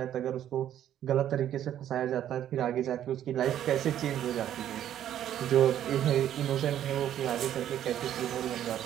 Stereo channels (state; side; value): quieter; left; 11.0 dB